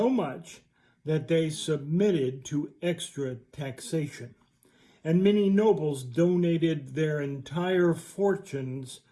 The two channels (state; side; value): identical; both; correlation 1.00